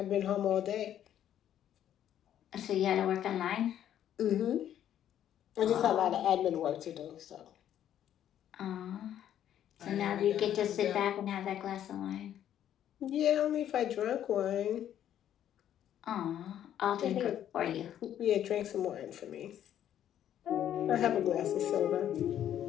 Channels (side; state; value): right; quieter; 10.7 dB